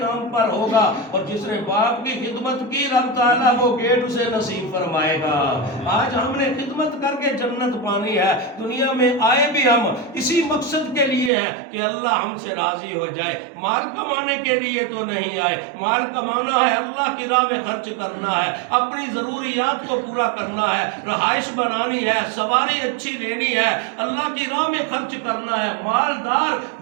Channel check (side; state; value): left; drops out; at 11.3 s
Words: نام پر ہوگا، اور جس نے باپ کی خدمت کی رب تعالیٰ وہ گیٹ اسے نصیب فرمائے گا۔ آج ہم نے خدمت کر کے جنت پانی ہے، دنیا میں آئے بھی ہم اسی مقصد کے لیے ہے کہ اللہ ہم سے راضی ہو جائے، مال کمانے کے لیے تو نہیں آئے۔ مال کمانا ہے، اللہ کی راہ میں خرچ کرنا ہے، اپنی ضروریات کو پورا کرنا ہے، رہائش بنانی ہے، سواری اچھی لینی ہے، اللہ کی راہ میں خرچ کرنا ہے۔ مالدار